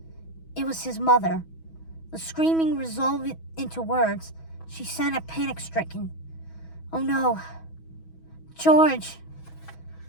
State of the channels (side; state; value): right; late; 6.2 ms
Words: It was his mother. The screaming resolved into words. She sounded panic-stricken. Oh no. George.